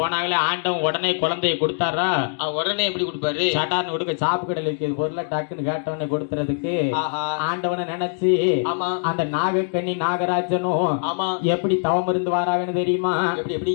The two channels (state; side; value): silent; right; digital silence